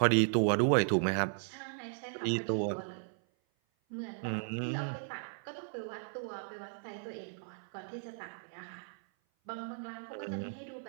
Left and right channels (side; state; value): left; silent; 54 dB below the other